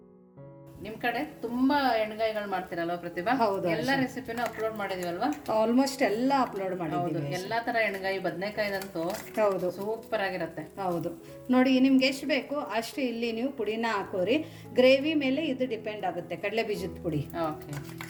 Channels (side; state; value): both; identical; correlation 1.00